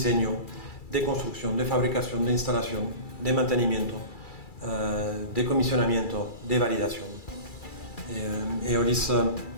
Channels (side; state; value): right; late; 2.3 ms